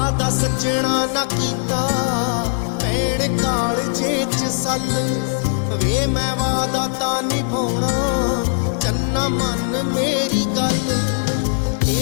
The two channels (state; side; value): silent; right; digital silence